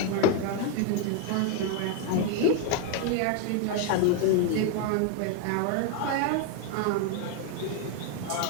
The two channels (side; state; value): both; different; correlation 0.01